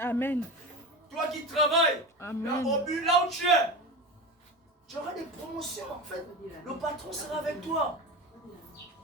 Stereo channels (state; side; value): normal; both; correlation 0.26